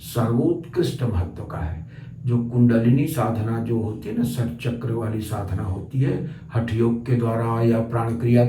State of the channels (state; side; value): identical; both; correlation 1.00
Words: सर्वोत्कृष्ट महत्व का है। जो कुंडलिनी साधना जो होती है ना, षट चक्र वाली साधना होती है हठ योग के द्वारा या प्राण क्रिया